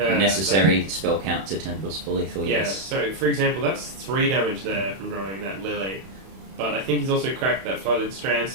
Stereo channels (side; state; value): left; late; 31 ms